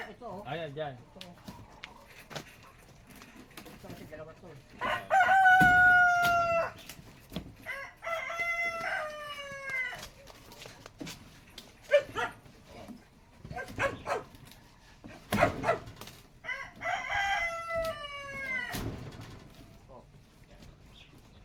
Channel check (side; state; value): both; identical; correlation 1.00